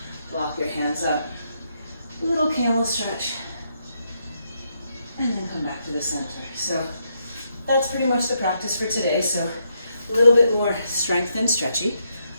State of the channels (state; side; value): inverted; both; correlation -0.78